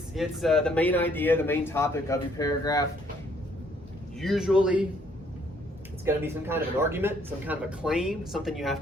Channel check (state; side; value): normal; both; correlation 0.65